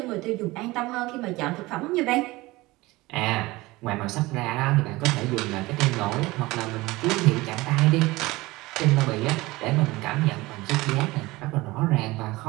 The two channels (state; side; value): quieter; left; 20.5 dB